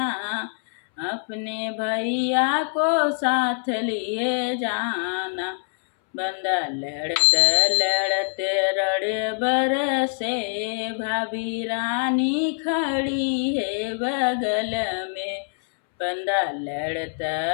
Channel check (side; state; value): right; silent; 62 dB below the other